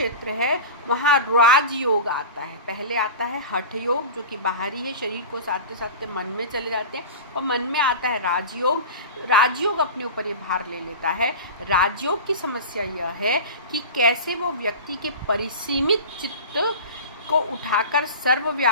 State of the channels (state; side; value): inverted; both; correlation -0.31